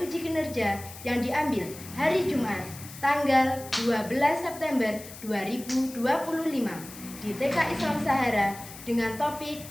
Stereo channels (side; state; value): left; noise; hiss, 15 dB below the sound